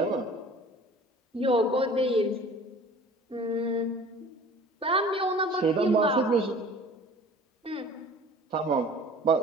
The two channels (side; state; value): both; normal; correlation 0.45